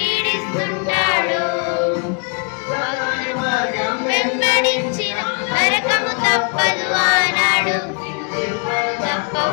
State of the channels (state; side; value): quieter; right; 39.9 dB